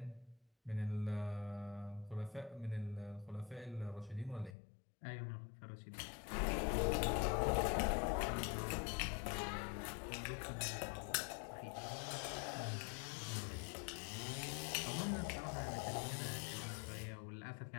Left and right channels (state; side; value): drops out; right; at 4.5 s